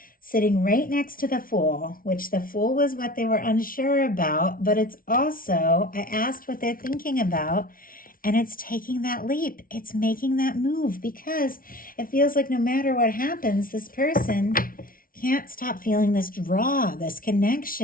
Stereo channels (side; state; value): right; late; 0.42 ms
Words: sitting right next to the Fool, which the Fool was what they were unsure about, but it's also, I asked what they're thinking about, and it's taking that leap. It's making that move because it feels like no matter what happens, this person can't stop feeling this draw, this